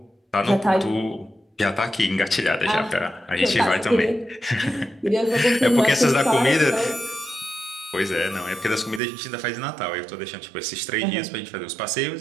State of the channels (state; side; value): drops out; left; at 9.0 s